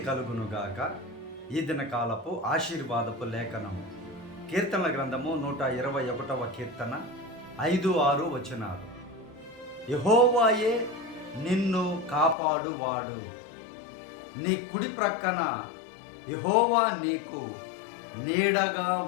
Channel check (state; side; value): drops out; right; at 12.4 s